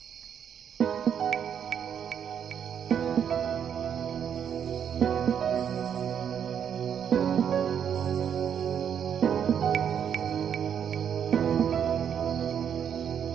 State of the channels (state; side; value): quieter; left; 8.4 dB